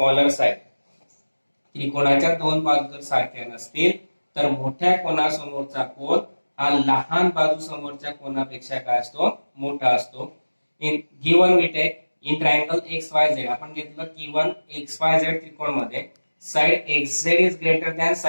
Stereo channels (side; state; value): both; inverted; correlation -1.00